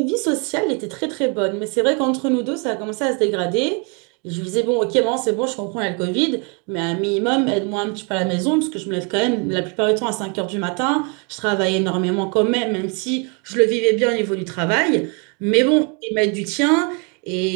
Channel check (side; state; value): left; quieter; 34.9 dB